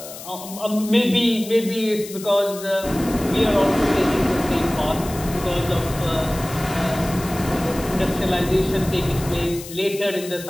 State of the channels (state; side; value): noise; left; hiss, 13 dB below the sound